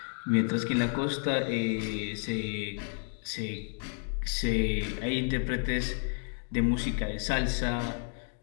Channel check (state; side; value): silent; right; 57 dB below the other